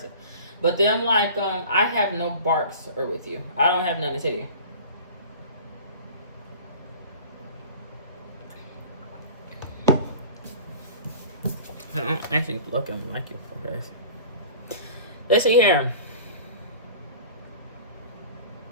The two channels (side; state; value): both; inverted; correlation -0.41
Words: But then, like, I have no barks or with you. I don't have nothing to tell you. I don't actually look like you for her. Let's see here.